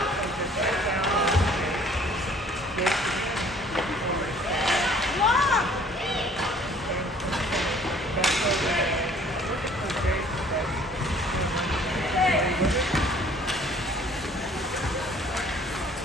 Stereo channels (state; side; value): normal; both; correlation 0.55